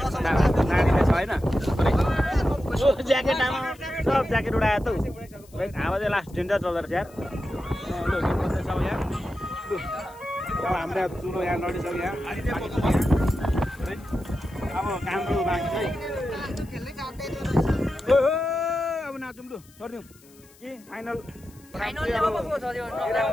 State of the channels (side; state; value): left; noise; hiss, 26 dB below the sound